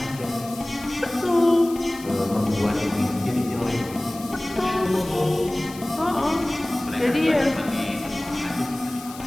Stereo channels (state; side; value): noise; left; hiss, 17 dB below the sound